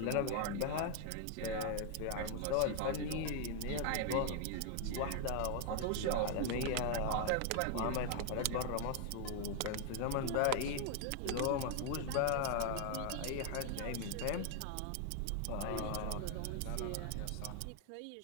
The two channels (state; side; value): different; both; correlation 0.00